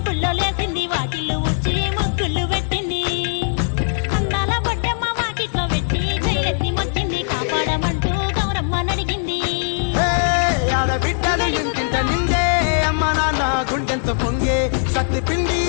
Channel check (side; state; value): right; silent; digital silence